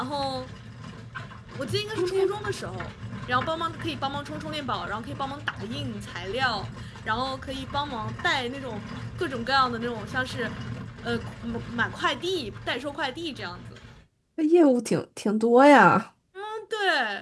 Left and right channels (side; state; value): both; identical; correlation 1.00